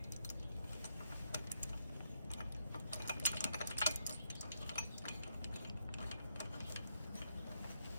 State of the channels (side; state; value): both; inverted; correlation -0.80